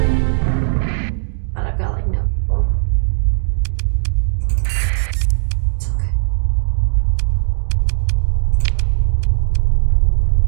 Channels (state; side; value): silent; left; digital silence